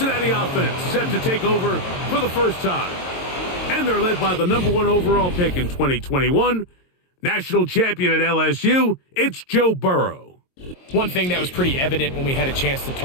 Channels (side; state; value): right; late; 22 ms